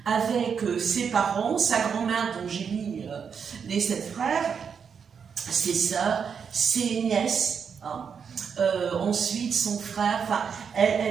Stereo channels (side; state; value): left; quieter; 6.7 dB